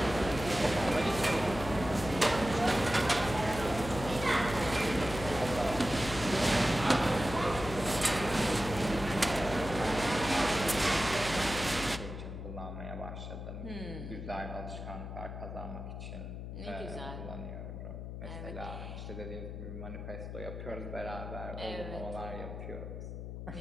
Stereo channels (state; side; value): noise; left; hum, 8 dB below the sound